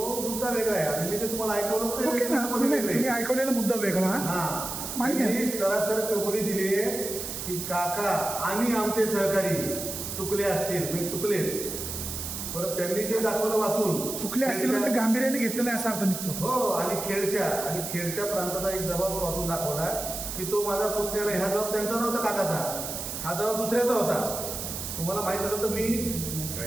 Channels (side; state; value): right; noise; hiss, 6 dB below the sound